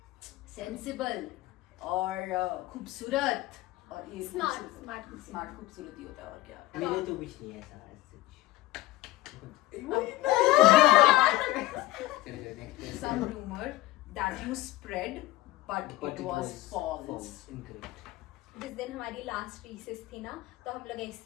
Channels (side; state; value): right; quieter; 17.2 dB